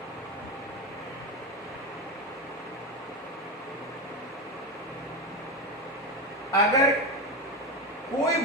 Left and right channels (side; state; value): both; normal; correlation 0.16